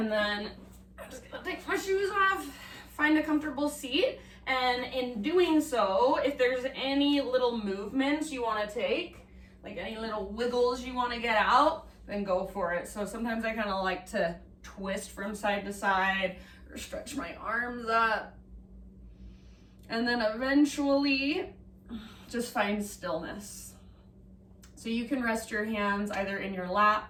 then I'm just gonna take my shoes off, find a comfortable seat, and in doing so, if there's any little movements you want to take, like any little wiggles you want to get out, then go for it. So sometimes I kind of like to twist from side to side or stretch my arms up. And then eventually just find stillness. So you can rest your hands either in your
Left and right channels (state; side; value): identical; both; correlation 1.00